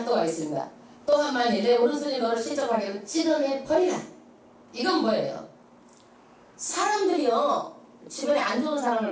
있습니다. 또한 만일 내 오른손이 너를 실족하게는 찢어내 버리라. 이건 뭐예요? 사람들이요 주변에 안 좋은 사람을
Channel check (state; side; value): identical; both; correlation 1.00